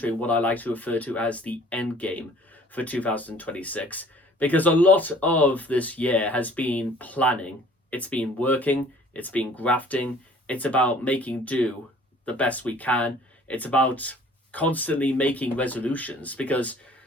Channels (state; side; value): normal; both; correlation 0.53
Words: what I like to refer to as the end game for 2026. Because a lot of this year has been planning. It's been working, it's been grafting, it's about making do the best we can. It's about constantly making resolutions, because